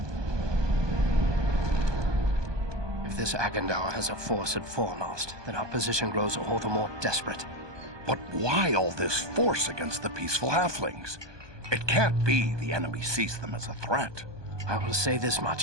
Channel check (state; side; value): late; left; 1.2 ms